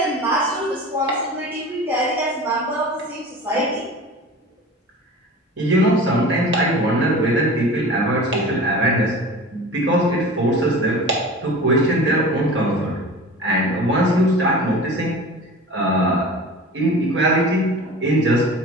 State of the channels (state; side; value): normal; both; correlation 0.36